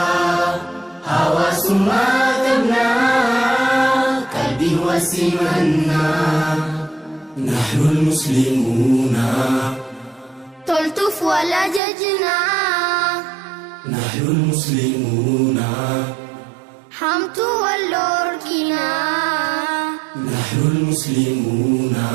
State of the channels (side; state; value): left; drops out; at 11.8 s